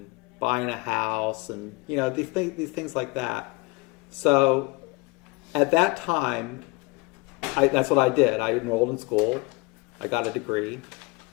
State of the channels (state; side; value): quieter; right; 25.3 dB